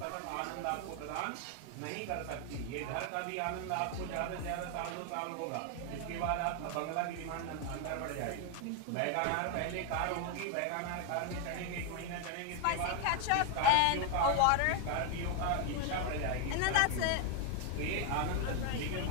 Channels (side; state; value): both; different; correlation 0.01